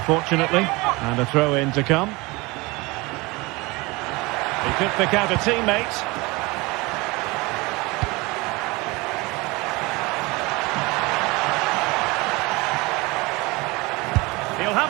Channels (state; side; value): quieter; left; 24.1 dB